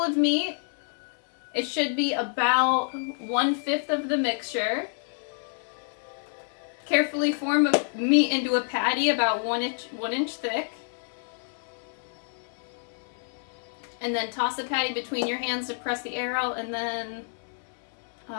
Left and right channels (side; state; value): right; silent; 59 dB below the other